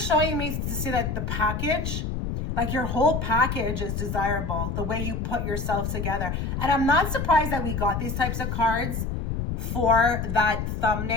me to see that the package, like your whole package is desirable, the way you put yourself together. And I'm not surprised that we got these types of cards for that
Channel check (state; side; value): noise; left; rumble, 3 dB below the sound